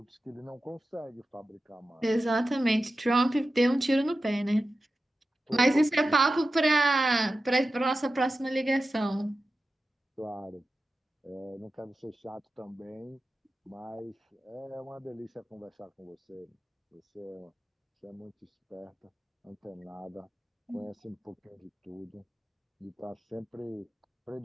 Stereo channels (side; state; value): both; normal; correlation 0.93